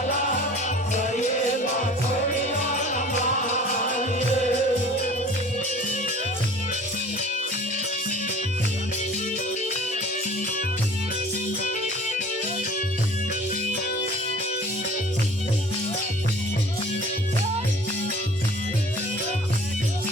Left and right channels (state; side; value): normal; both; correlation 0.46